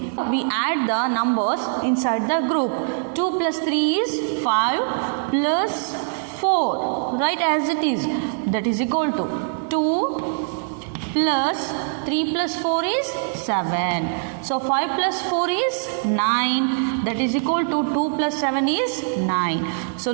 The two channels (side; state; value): left; silent; 64 dB below the other